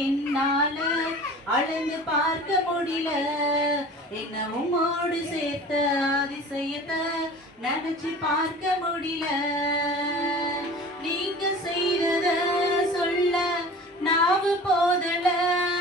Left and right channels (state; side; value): normal; both; correlation 0.40